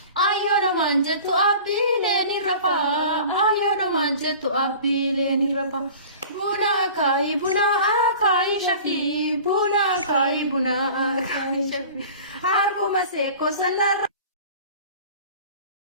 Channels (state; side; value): inverted; both; correlation -0.41